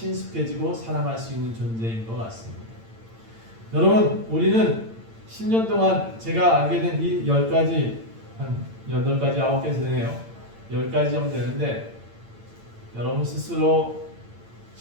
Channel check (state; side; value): late; left; 8.9 ms